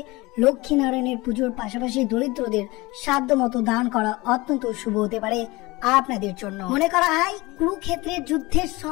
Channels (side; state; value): right; quieter; 22.2 dB